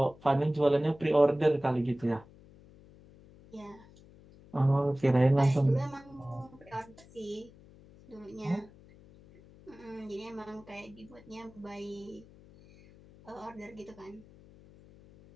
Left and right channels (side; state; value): left; noise; hum, 23 dB below the sound